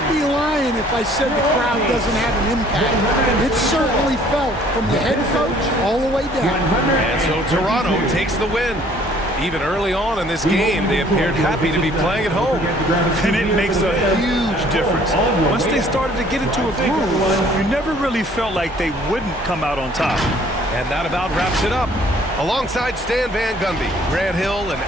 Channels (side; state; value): both; normal; correlation 0.57